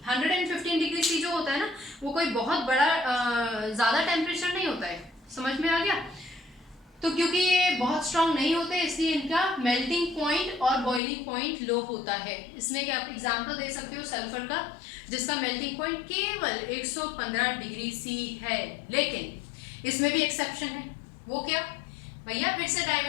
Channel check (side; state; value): right; drops out; at 11.0 s